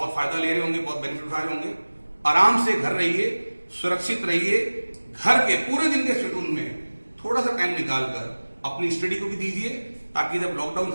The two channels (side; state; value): both; inverted; correlation -1.00